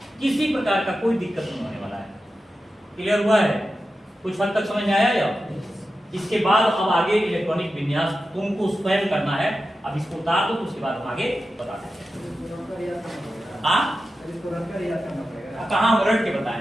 किसी प्रकार का कोई दिक्कत नहीं होने वाला है। क्लियर हुआ है? कुछ हद तक समझ में आया या? इसके बाद अब आगे इलेक्ट्रॉनिक विन्यास तुमको स्वयं करना है। अब इसको उतार दो तो उसके बाद हम आगे बताते हैं। हाँ कहाँ हम रट के बताए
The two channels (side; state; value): both; normal; correlation 0.92